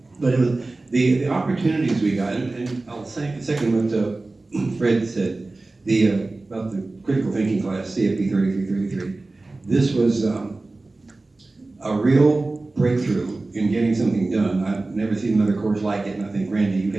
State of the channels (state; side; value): quieter; left; 3.2 dB